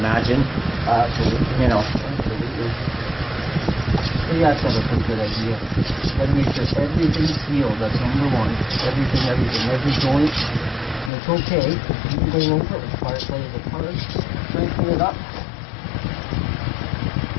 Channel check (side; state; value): right; drops out; at 11.1 s